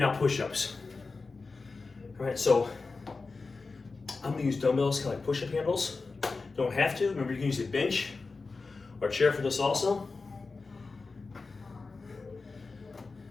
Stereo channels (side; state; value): right; quieter; 4.1 dB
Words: push-ups. All right, so I'm gonna use dumbbells, kind of like push-up handles. Don't have to. Remember, you can use a bench or a chair for this also.